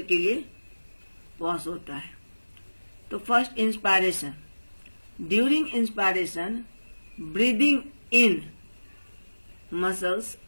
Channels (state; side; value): inverted; both; correlation -1.00